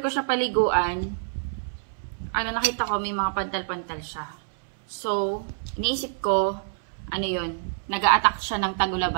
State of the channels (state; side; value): silent; left; 61 dB below the other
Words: ko siya paliguan, nakita ko may mga pantal-pantal siya. So, iniisip ko, yun, nag-a-attack siya ng